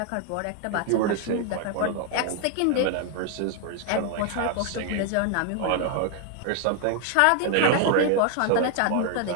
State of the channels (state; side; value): different; both; correlation 0.01